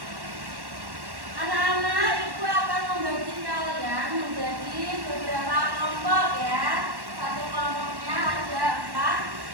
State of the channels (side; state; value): left; late; 1.1 ms